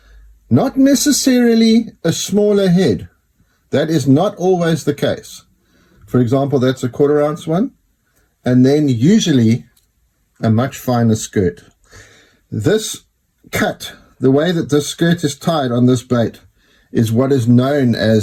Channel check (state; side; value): identical; both; correlation 1.00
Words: not necessarily a smaller head. That is not always the case. For example, that's a 1/4 ounce one, and then usually a much finer skirt. This cut, the way that this skirt is tied on this bait, is what is known